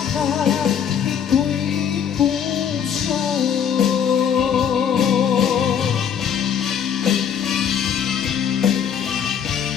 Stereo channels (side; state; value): right; quieter; 8.2 dB